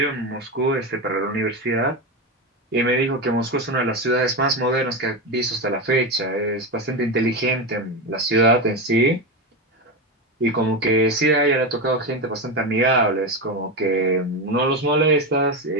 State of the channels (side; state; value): both; normal; correlation 0.15